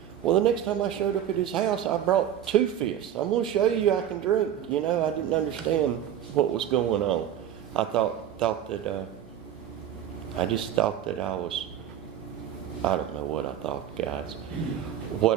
Well, the next time I showed up at his house, I brought 2 fists. I'm going to show you I can drink. You know, I didn't understand what was going on. I thought that, I just thought that I was, I don't know what I thought, guys.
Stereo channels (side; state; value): left; quieter; 10.2 dB